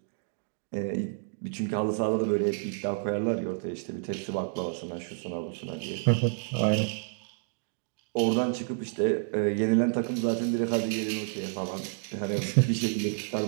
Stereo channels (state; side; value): silent; left; digital silence